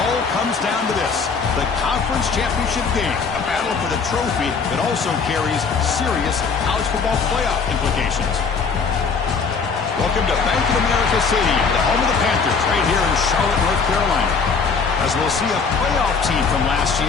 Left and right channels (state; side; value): quieter; right; 5.2 dB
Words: comes down to this: the conference championship game, a battle for the trophy that also carries serious college football playoff implications. Welcome to Bank of America Stadium, the home of the Panthers, right here in Charlotte, North Carolina. As we'll see a playoff team from last